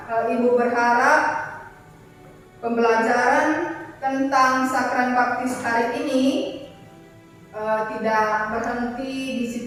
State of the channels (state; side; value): identical; both; correlation 1.00